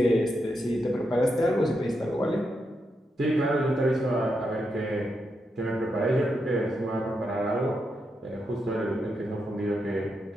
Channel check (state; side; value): normal; both; correlation 0.84